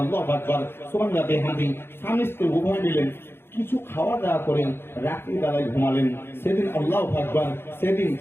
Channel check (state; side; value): late; right; 0.11 ms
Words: আকবার, সুবহানাল্লাহ বিহামদি স্বামী স্ত্রী উভয় মিলেন কিছু খাওয়া দাওয়া করেন, রাত্রি বেলায় ঘুমালেন। সেদিন আল্লাহু আকবার, সেদিন